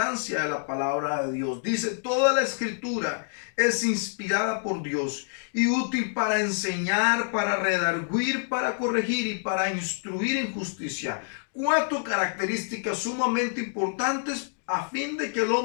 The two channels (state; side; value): silent; right; digital silence